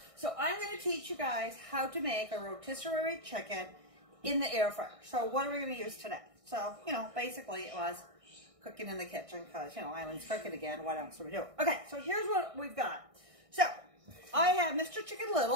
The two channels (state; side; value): late; left; 1.6 ms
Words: so I'm going to teach you guys how to make a rotisserie chicken in the air fryer. So what are we going to use today? So, basically it was cooking in the kitchen because, Eileen's cooking again. What else are we doing? Okay, so here's what we've got. So, I have Mr. Chicken